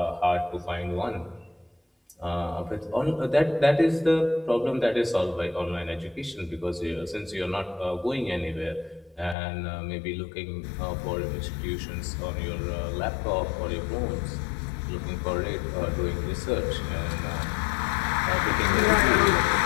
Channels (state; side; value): drops out; right; at 9.3 s